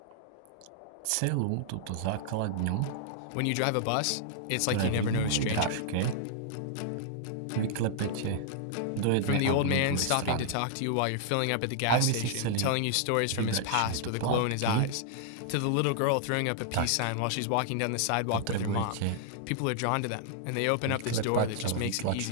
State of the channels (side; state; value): both; different; correlation -0.01